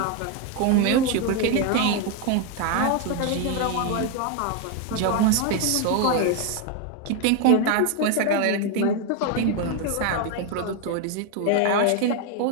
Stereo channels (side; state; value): both; different; correlation 0.01